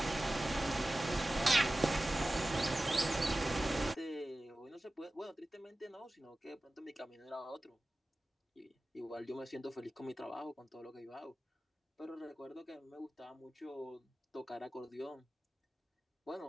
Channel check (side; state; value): both; normal; correlation 0.96